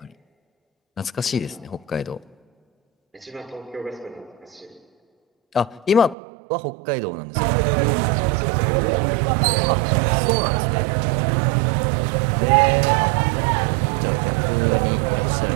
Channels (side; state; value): left; drops out; at 6.2 s